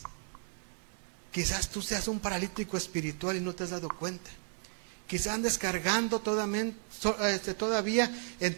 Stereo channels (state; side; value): silent; left; 55 dB below the other